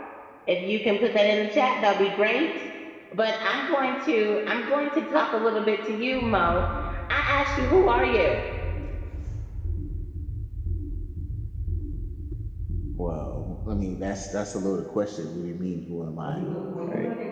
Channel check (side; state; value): both; identical; correlation 1.00